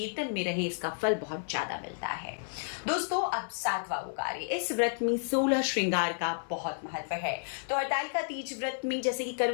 में रहें, इसका फल बहुत ज्यादा मिलता है। दोस्तों, अब 7वां वो कार्य, इस व्रत में 16 श्रृंगार का बहुत महत्व है। तो हरतालिका तीज व्रत में जैसे कि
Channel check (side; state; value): right; silent; 57 dB below the other